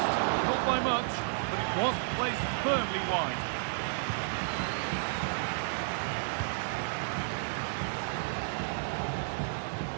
Not by much, but it was placed firmly wide.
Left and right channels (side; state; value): left; silent; digital silence